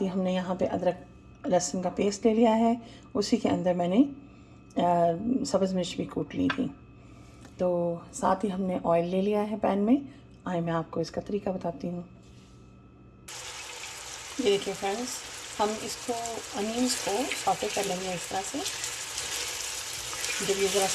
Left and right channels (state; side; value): identical; both; correlation 1.00